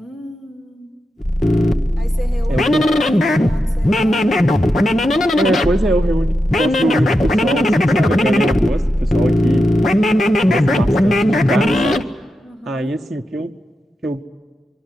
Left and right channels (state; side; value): normal; both; correlation 0.88